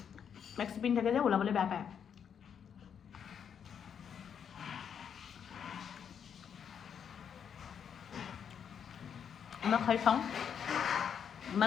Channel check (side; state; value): right; quieter; 7.8 dB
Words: মেক্সি পিন থাকে যে ওলাবলৈ বেয়া পায় মই খাই চাওঁ